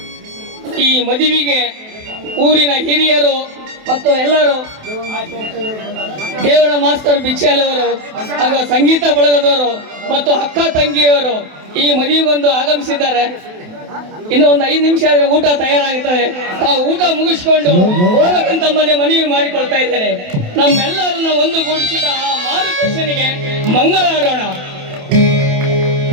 ಈ ಮದುವೆಗೆ ಊರಿನ ಹಿರಿಯರು ಮತ್ತು ಎಲ್ಲರೂ, ದೇವರ ಮಾಸ್ತರ್ ಬಿಚ್ಚಾಲವರು ಹಾಗೂ ಸಂಗೀತ ಬಳಗದವರು ಮತ್ತು ಅಕ್ಕ ತಂಗಿಯವರು ಈ ಮದುವೆಗೊಂದು ಆಗಮಿಸಿದ್ದಾರೆ. ಇನ್ನು ಒಂದು 5 ನಿಮಿಷ ಆದ್ರೆ ಊಟ ತಯಾರಾಗುತ್ತದೆ. ತಾವು ಊಟ ಮುಗಿಸ್ಕೊಂಡು ಹೋಗಬೇಕಂತ ತಮ್ಮಲ್ಲಿ ಮನವಿ ಮಾಡಿಕೊಳ್ತಾ ಇದ್ದೇನೆ. ನಮ್ಮೆಲ್ಲರನ್ನ ಒಂದುಗೂಡಿಸಿದ ಆ ಮಾರುಕೃಷ್ಣನಿಗೆ ಮಂಗಳಾಡೋಣ.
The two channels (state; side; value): late; left; 28 ms